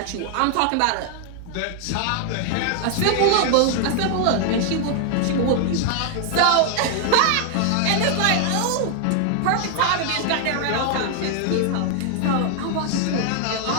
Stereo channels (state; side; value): different; both; correlation 0.00